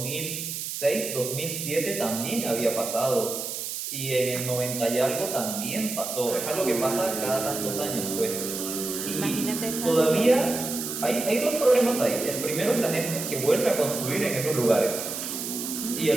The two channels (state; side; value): noise; right; hiss, 5 dB below the sound